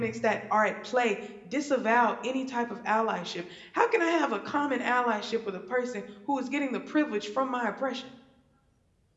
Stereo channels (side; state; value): both; identical; correlation 1.00